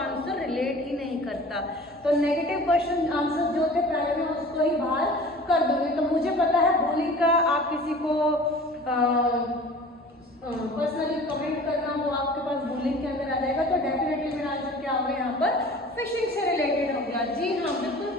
रिलेट ही नहीं करता। तो नेगेटिव क्वेश्चन आंसर जो थे पहले मैं उसको ही बाहर कर दूंगी। तो मुझे पता है बूलिंग का आप किसी को पर्सनली कमेंट करना, वो आपके पास बूलिंग के अंदर आ जाएगा। तो डेफिनेटली मेरा आंसर क्या होगा यहाँ पर, फिशिंग से रिलेटेड हो गया। जी हाँ,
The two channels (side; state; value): both; normal; correlation 0.43